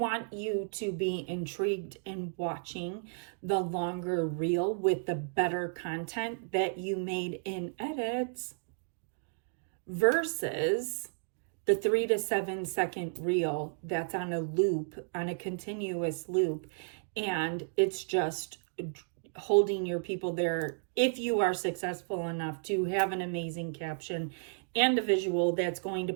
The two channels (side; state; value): left; silent; digital silence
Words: you to be intrigued in watching the longer reel with the better content that you made in edits versus the 3 to 7 second reel that's on a loop, on a continuous loop, and it's just holding your people there if you are successful enough to have an amazing caption and a visual that's going to